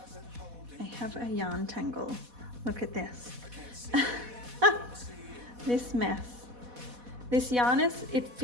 I have a yarn tangle. Look at this. This mess. This yarn it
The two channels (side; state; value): left; late; 4.1 ms